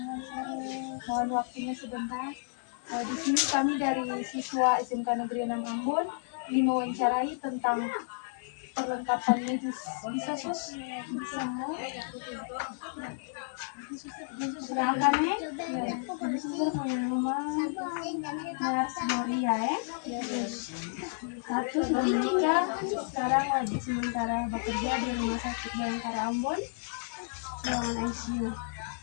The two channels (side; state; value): right; silent; digital silence